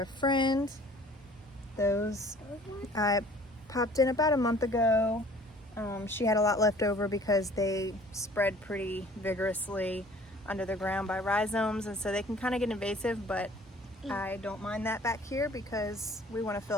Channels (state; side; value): normal; both; correlation 0.52